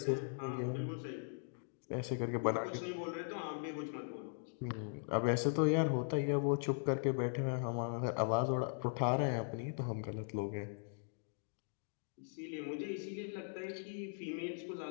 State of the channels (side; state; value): right; silent; digital silence